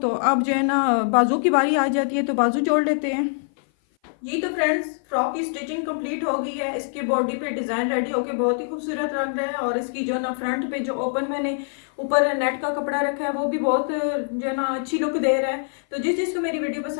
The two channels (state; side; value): silent; right; 56 dB below the other